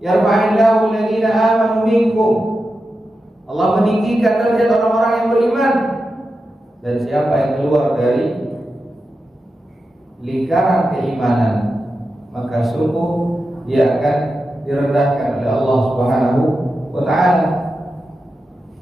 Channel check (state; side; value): normal; both; correlation 0.90